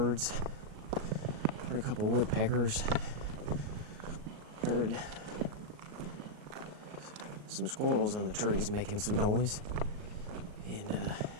heard a couple woodpeckers, heard some squirrels in the trees making some noise, and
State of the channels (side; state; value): left; late; 38 ms